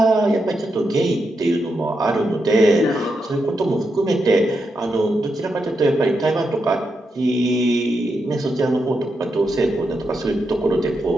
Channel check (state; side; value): normal; both; correlation 0.84